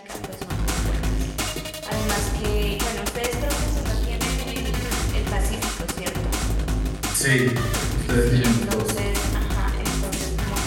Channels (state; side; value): identical; both; correlation 1.00